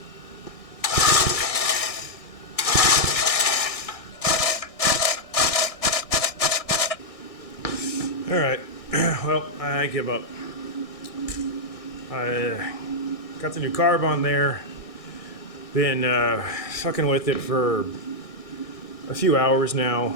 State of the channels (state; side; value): late; right; 1.6 ms